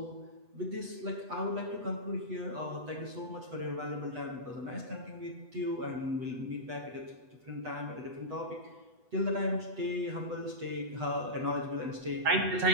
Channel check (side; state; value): left; late; 8.1 ms